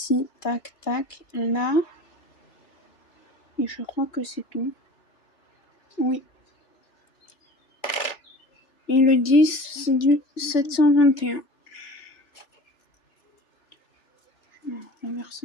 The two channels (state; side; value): late; right; 3.4 ms